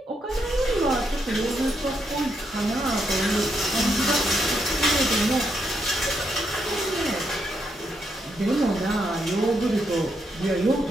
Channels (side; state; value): both; normal; correlation 0.79